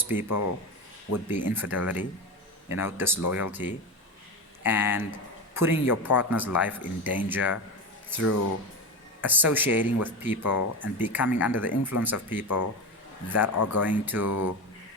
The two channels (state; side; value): normal; both; correlation 0.22